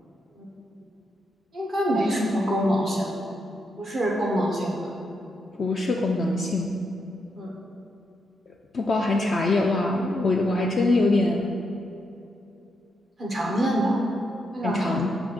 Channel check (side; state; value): both; normal; correlation 0.81